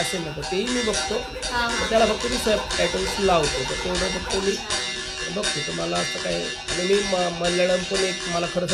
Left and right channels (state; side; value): identical; both; correlation 1.00